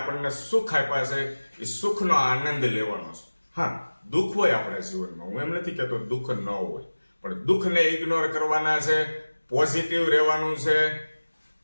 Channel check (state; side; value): inverted; both; correlation -1.00